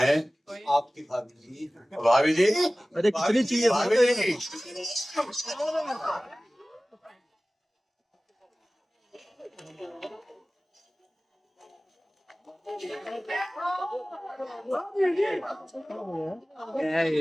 आपकी भाभी जी। भाभी जी, अरे कितनी चाहिए भाभी जी।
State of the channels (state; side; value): normal; both; correlation 0.98